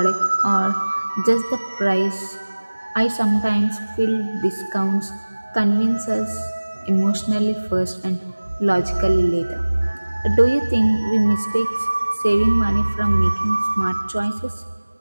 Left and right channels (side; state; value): both; inverted; correlation -1.00